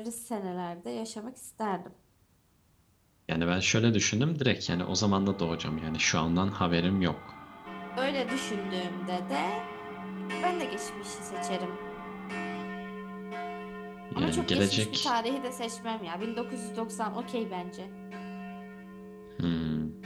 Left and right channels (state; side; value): identical; both; correlation 1.00